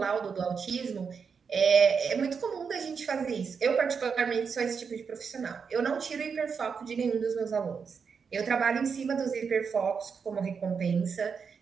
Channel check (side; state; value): left; quieter; 6.0 dB